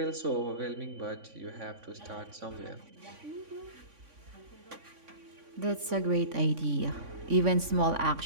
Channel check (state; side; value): late; left; 3.5 ms